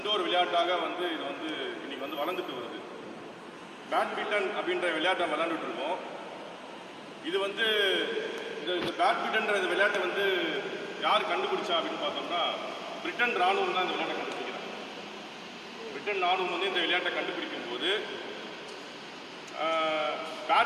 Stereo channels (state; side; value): identical; both; correlation 1.00